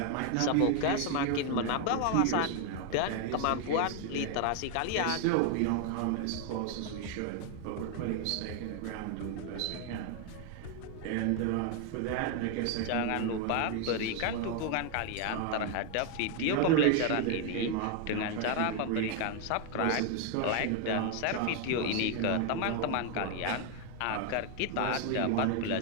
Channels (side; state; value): both; different; correlation 0.00